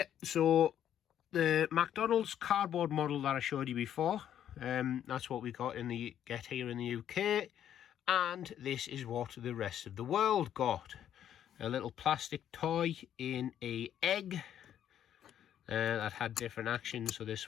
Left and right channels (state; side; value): quieter; right; 10.2 dB